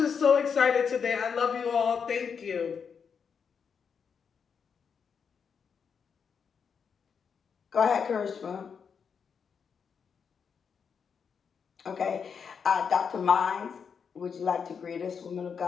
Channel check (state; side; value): quieter; right; 6.5 dB